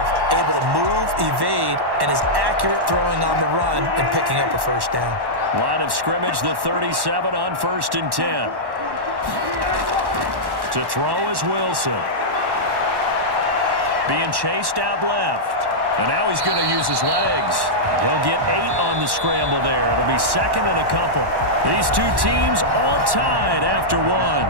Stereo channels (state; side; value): late; left; 1.1 ms